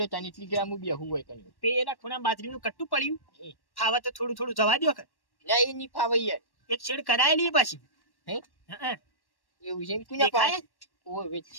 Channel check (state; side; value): late; right; 1.1 ms